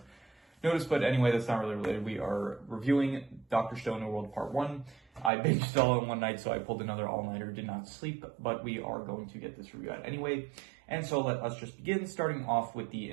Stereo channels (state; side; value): drops out; left; at 5.3 s